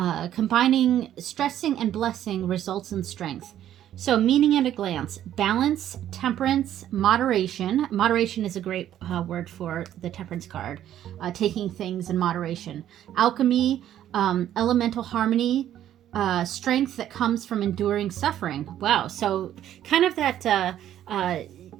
Combining stressing and blessing results in strength. So, meaning at a glance: balance, temperance, moderation. Moderation is a great word for the temperance card, taking things in moderation. Alchemy, elemental harmony, strength that comes from enduring suffering. Wow. So kind of that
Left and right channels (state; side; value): quieter; left; 11.4 dB